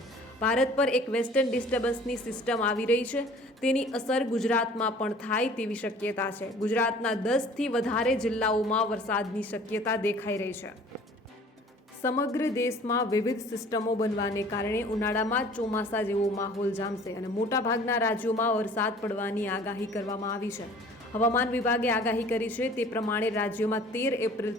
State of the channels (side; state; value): both; normal; correlation 0.49